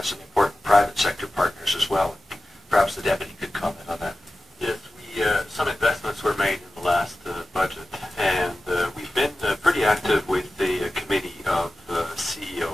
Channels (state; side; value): normal; both; correlation 0.94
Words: some important private sector partners as well. Perhaps the deputy could comment on that. Yes, some investments were made in the last budget, and we've been pretty active with the committee of